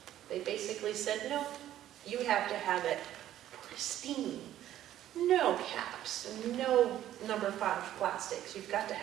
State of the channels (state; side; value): quieter; left; 12.4 dB